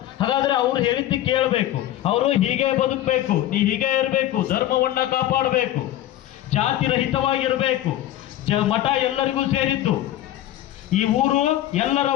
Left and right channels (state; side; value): quieter; right; 13.5 dB